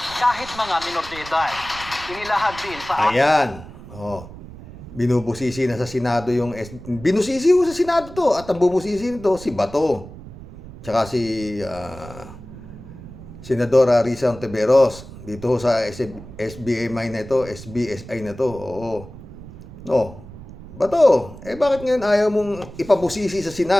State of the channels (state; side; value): noise; right; rumble, 16 dB below the sound